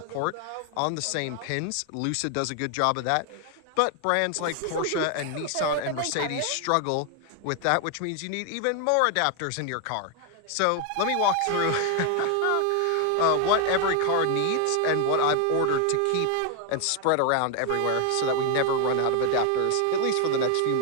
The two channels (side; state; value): both; different; correlation 0.01